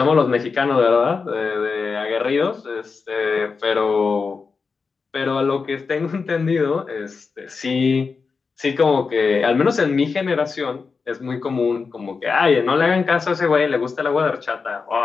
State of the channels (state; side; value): quieter; right; 4.9 dB